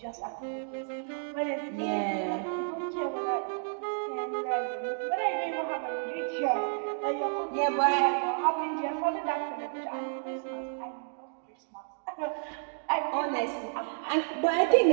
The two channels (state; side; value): silent; left; digital silence